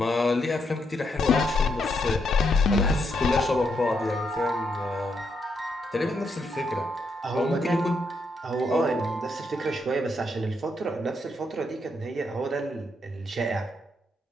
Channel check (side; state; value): both; normal; correlation 0.78